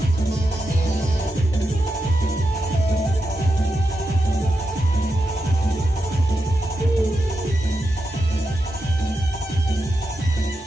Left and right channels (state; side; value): normal; both; correlation 0.87